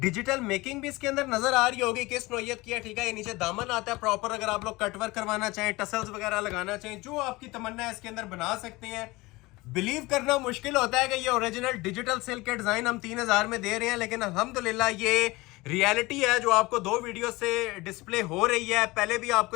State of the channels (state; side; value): quieter; right; 21.6 dB